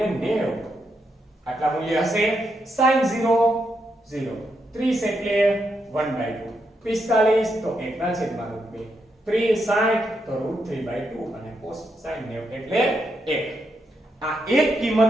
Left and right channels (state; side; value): normal; both; correlation 0.81